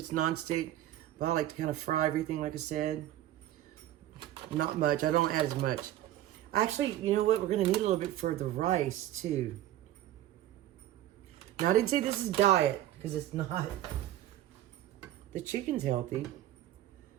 nonstick, but I like to kind of fry everything, like I said. Not much. I don't add as much. Actually, you know what? We're gonna need a little bit for the rice too. Now, I didn't say this is diet because it's not. The chicken's healthy.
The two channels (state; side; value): quieter; left; 13.4 dB